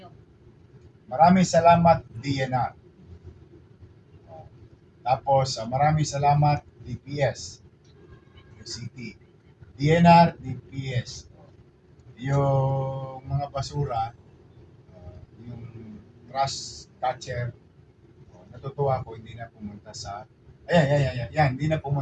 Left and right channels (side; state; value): both; identical; correlation 1.00